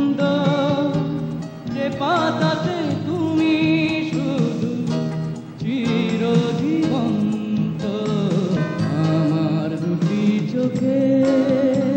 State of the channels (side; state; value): both; identical; correlation 1.00